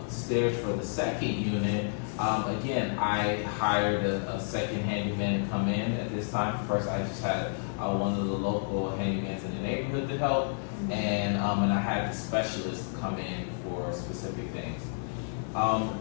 for the second unit, again, I hired a second handyman to come in at this time. First, I just had one of the local handymans in the neighborhood to help, and I had the specialist come in for specific things.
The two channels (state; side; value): silent; right; digital silence